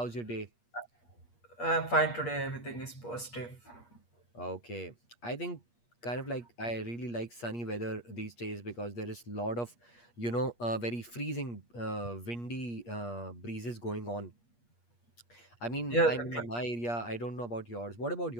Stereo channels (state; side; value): late; right; 8.4 ms